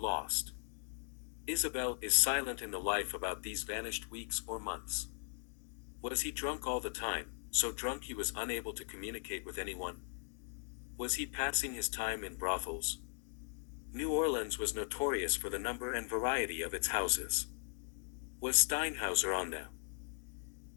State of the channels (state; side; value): silent; right; 52 dB below the other